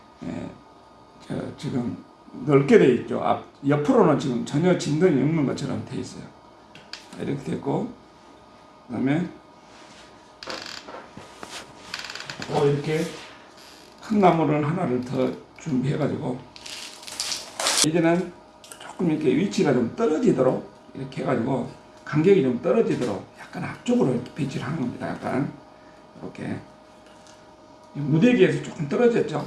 지금 넓게 돼 있죠. 옆으로는 지금 전혀 진동이 없는 것처럼 돼 있어요. 이렇게 됐고, 그다음에 또 이렇게 큰 나무를 하나를 더 준비해가지고, 이제는 조금 이렇게 위치가 좀 떨어지도록 이렇게 해가지고 간격이 좀 떨어지도록 약간 앞쪽으로 이렇게 배치를 하는 겁니다. 약간 이렇게 무대기에서 조금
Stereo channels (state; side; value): identical; both; correlation 1.00